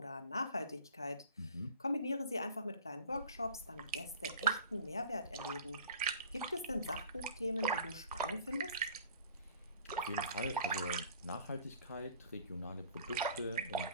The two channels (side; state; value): both; inverted; correlation -0.47